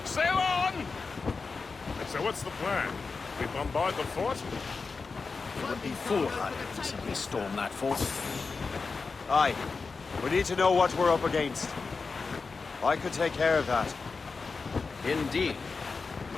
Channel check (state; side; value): quieter; right; 4.5 dB